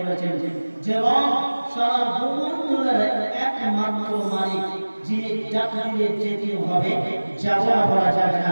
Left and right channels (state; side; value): inverted; both; correlation -1.00